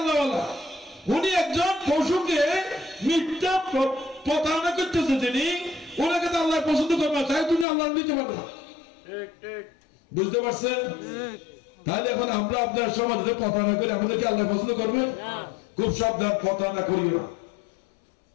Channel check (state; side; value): drops out; right; at 7.7 s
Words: উনি একজন পশুকে মিথ্যা প্রতারণা করতেছে, যিনি ওনাকে তো আল্লাহ পছন্দ করবে না, তাই তুমি আল্লাহ নিতে পারবে না। বুঝতে পারছেন? তাহলে এখন আমরা আপনার সমাজে প্রতারণা করি, আমাদেরকে আল্লাহ পছন্দ করবে? খুব সাবধান, প্রতারণা করিও না,